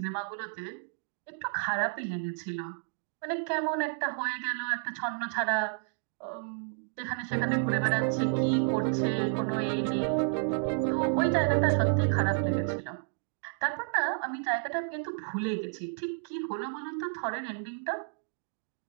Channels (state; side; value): silent; left; digital silence